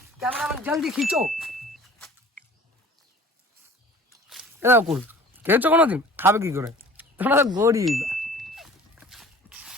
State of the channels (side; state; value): both; normal; correlation 0.46